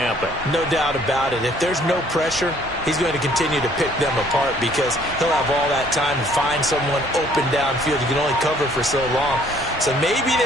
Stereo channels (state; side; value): normal; both; correlation 0.60